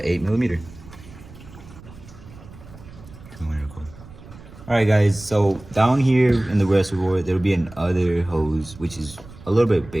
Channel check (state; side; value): noise; right; rumble, 19 dB below the sound